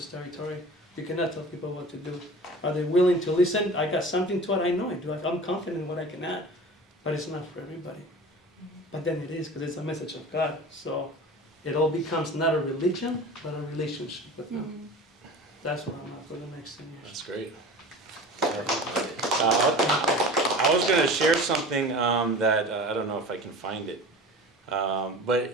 territory. You cannot tell people what to do. Are they willing to listen? I got something to it, I know I do. I'm confident in what I can add, but it's not for everybody. But then it is, because it's a message of God. So it all becomes not a religion, but a relationship with Him. That's what I'm at for the next 10 years. That's great. I was going to share something that I don't know if I can find it.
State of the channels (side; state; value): both; normal; correlation 0.37